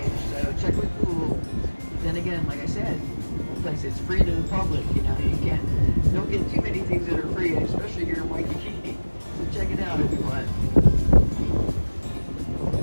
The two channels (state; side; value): inverted; both; correlation -1.00